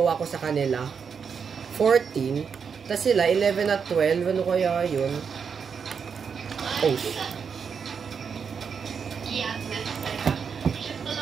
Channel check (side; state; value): left; quieter; 6.4 dB